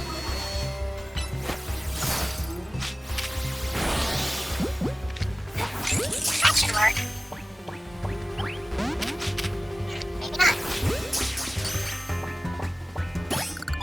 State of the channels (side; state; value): both; normal; correlation 0.97